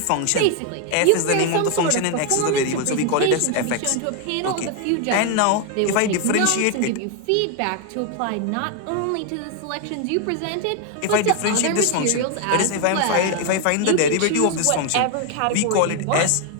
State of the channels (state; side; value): different; both; correlation 0.01